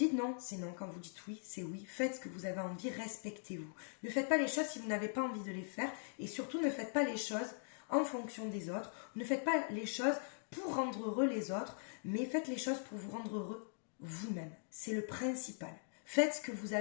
non, c'est non. Quand vous dites oui, c'est oui. Faites ce que vous avez envie, respectez-vous. Ne faites pas les choses si vous n'avez pas envie de les faire. Et surtout, ne faites pas les choses en fonction des autres. Ne faites pas les choses pour rendre heureux les autres, mais faites les choses pour vous rendre heureux vous-même. C'est le principal. Faites ce que vous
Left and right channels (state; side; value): silent; right; digital silence